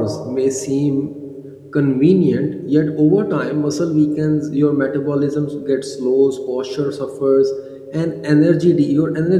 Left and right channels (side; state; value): both; identical; correlation 1.00